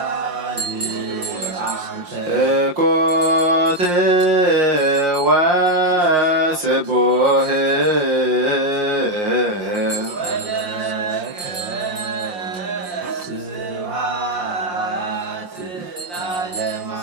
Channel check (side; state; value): left; late; 5.7 ms